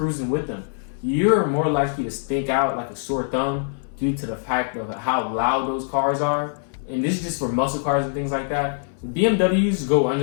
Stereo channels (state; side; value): silent; right; 61 dB below the other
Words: with them, you're more likely to stick out like a sore thumb due to the fact of how loud those cars are. And this is just for muscle cars and things like that. BMWs go